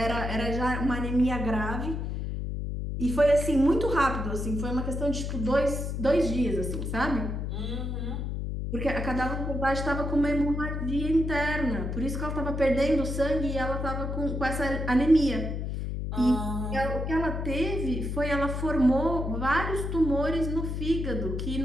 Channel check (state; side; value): noise; left; hum, 3 dB below the sound